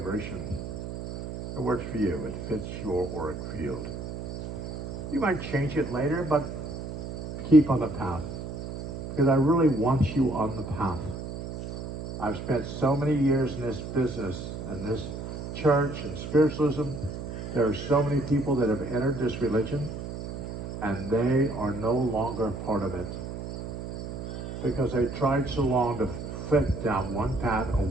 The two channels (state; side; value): noise; right; hum, 7 dB below the sound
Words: It works for you. It fits your auric field. You might change it later, but keep on the path. Because I really want you on the path. I've spent so many years in this business and this church and spiritualism. There are so many people that have entered this religion and they are no longer part of it. Because they tried so long to fit down one path or